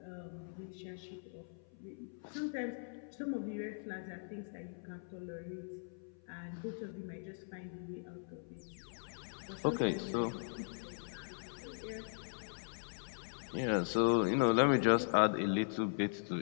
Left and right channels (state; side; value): silent; right; 51 dB below the other